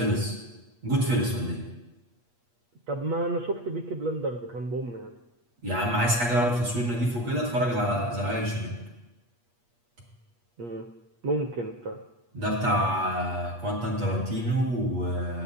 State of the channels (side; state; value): left; late; 8.4 ms